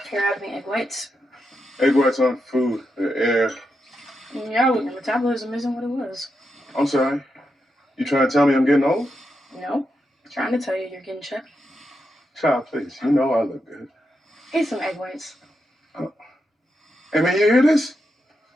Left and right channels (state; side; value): normal; both; correlation 0.85